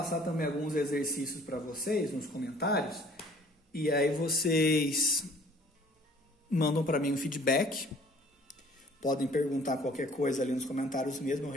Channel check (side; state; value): both; normal; correlation 0.54